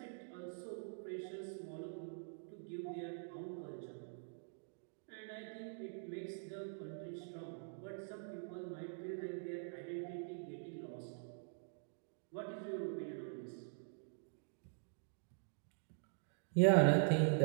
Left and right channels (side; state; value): left; silent; digital silence